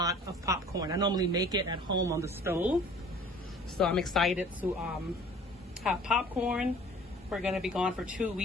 of popcorn. I normally make it at home on the stove. So I'm excited to have popcorn. We're going to be gone for 2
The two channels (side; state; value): both; normal; correlation 0.49